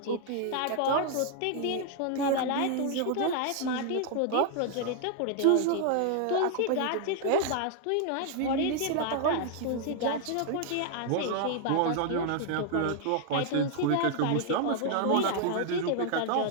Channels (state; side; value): different; both; correlation 0.00